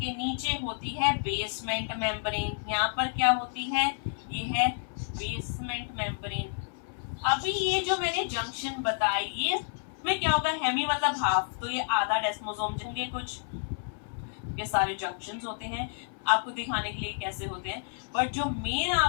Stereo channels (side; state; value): right; silent; 58 dB below the other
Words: नीचे होती है बेसमेंट मेम्ब्रेन। यहाँ पर क्या होती है, ये है बेसमेंट मेम्ब्रेन। अभी ये जो मैंने जंक्शन बताई, ये में क्या होगा, हेमी मतलब हाफ, तो ये आधा डेस्मोसोम होंगे, कुछ ये सारे जंक्शंस होते हैं, आपको दिखाने के लिए कैसे होते हैं। बट जो मेन